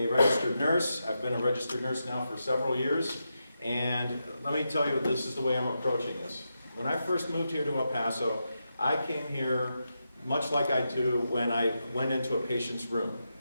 registered nurse. I've been a registered nurse now for several years, and let me tell you, this is the way I'm approaching this. When I first moved here to El Paso, I came here much like I do when I went into a patient's room,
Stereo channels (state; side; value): inverted; both; correlation -0.87